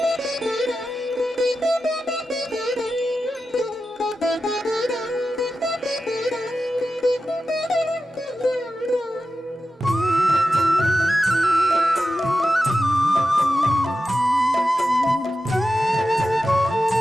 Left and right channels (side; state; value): both; normal; correlation 0.91